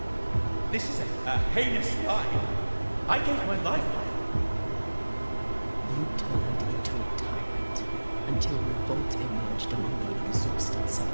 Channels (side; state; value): both; inverted; correlation -1.00